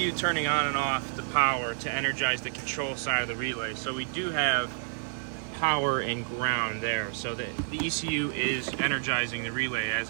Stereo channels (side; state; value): left; silent; 58 dB below the other